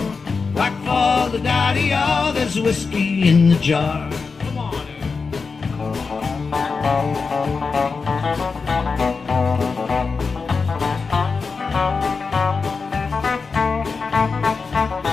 whack for the daddy-o. There's whiskey in the jar.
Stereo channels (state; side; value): quieter; right; 4.7 dB